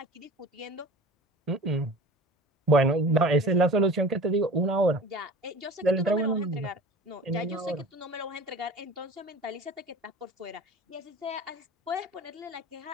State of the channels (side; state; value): both; normal; correlation 0.39